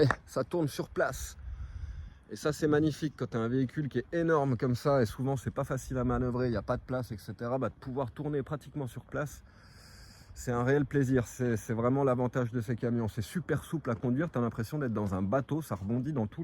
ça tourne sur place. Et ça, c'est magnifique quand tu as un véhicule qui est énorme comme ça. Et souvent, c'est pas facile à manœuvrer, il n'y a pas de place, etc. De pouvoir tourner pratiquement sur place. C'est un réel plaisir, c'est vraiment l'avantage de ces camions. C'est super souple à conduire, tu as l'impression d'être dans un bateau, ça rebondit dans tous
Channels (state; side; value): identical; both; correlation 1.00